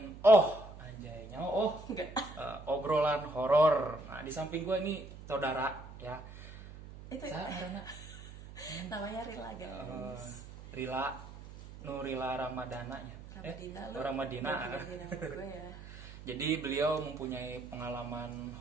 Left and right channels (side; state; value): right; noise; hum, 14 dB below the sound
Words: obrolan horor. Nah, di samping gua ini saudara ya. Itu namanya Rila guys. Rila Ramadana ya. Ramadina gue ya. Jadi beliau mempunyai pengalaman